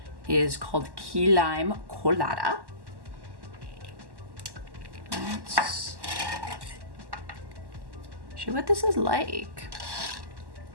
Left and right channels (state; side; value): late; left; 1.1 ms